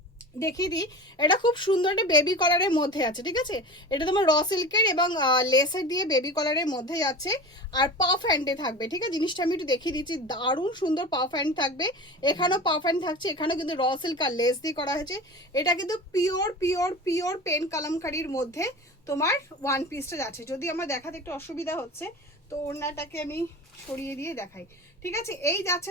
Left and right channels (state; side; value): normal; both; correlation 0.33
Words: দেখিয়ে দিই। এটা খুব সুন্দর একটা বেবি কলারের মধ্যে আছে, ঠিক আছে। এটা তোমার র সিল্কের এবং লেসের দিয়ে বেবি কলারের মধ্যে যাচ্ছে, আর পাফ হ্যান্ডে থাকবে, ঠিক আছে। জিনিসটা আমি একটু দেখিয়ে দিচ্ছি, দারুণ সুন্দর পাফ হ্যান্ড থাকবে। এখানেও পাফ হ্যান্ড থাকছে, এখানেও কিন্তু র সিল্ক আর লেস দিয়ে করা হয়েছে। এটা কিন্তু পিওর পিওর পিওর পেন কালামকারির মধ্যে তোমার ওয়ান পিসটা যাচ্ছে। যদি আমার দেখাতে একটু অসুবিধা হচ্ছে তো ওড়নাটাকে আমি সরিয়ে দিয়ে দেখাই, ঠিক আছে। এই যাচ্ছে